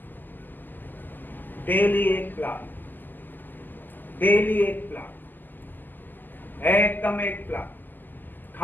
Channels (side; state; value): right; late; 0.089 ms